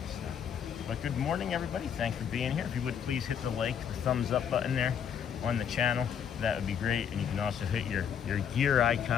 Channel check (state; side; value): quieter; right; 8.1 dB